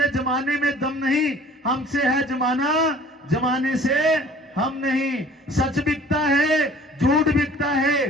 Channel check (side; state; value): both; normal; correlation 0.50